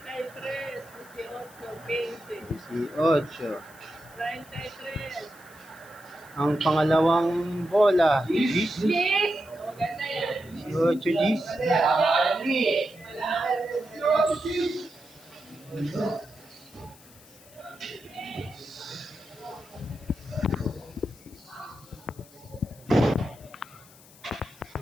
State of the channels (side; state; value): left; noise; hiss, 23 dB below the sound